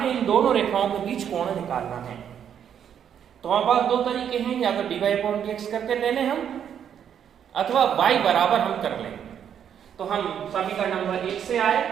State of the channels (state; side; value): quieter; left; 8.8 dB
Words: इन दोनों रेखाओं के बीच कोण निकालना है। तो हमारे पास दो तरीके हैं, या तो dy अपॉन dx करके ले लें हम, अथवा y बराबर हम कर लें। तो हम समीकरण नंबर 1 से